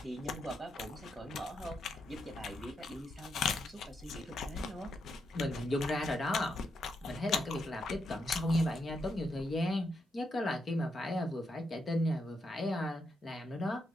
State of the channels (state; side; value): normal; both; correlation 0.81